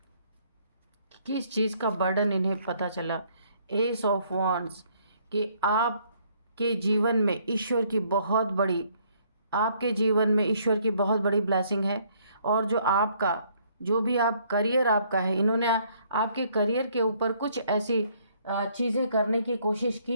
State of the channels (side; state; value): both; inverted; correlation -0.65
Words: किस चीज़ का बर्डन इन्हें पता चला। एस ऑफ वॉन्ड्स, कि आपके जीवन में ईश्वर की बहुत बड़ी, आपके जीवन में ईश्वर की बहुत बड़ी ब्लेसिंग है। और जो भी आप करियर आपका है, इन्होंने आपके करियर के ऊपर कुछ ऐसी चीज़ें करने की कोशिश